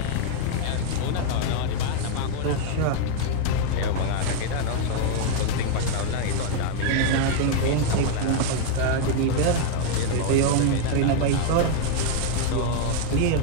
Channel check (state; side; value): different; both; correlation 0.00